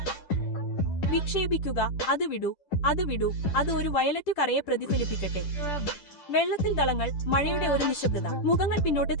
വിക്ഷേപിക്കുക. അത് വിടൂ. അത് വിടൂ. അത് ഒരു വയലറ്റ് കറയെ പ്രതിഫലിപ്പിക്കട്ടെ. വെള്ളത്തിൽ ദളങ്ങൾ. മഴയുടെ ഒരു നിശബ്ദത. മുഖങ്ങൾ പിന്നോട്ട്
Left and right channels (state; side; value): late; right; 10 ms